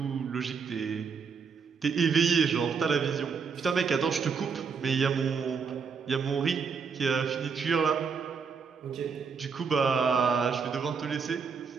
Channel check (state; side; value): quieter; left; 5.8 dB